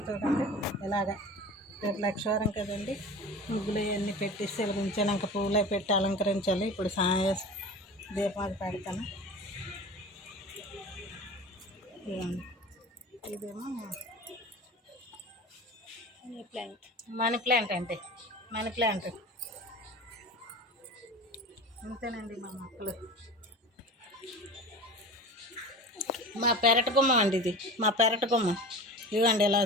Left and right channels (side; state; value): both; normal; correlation 0.34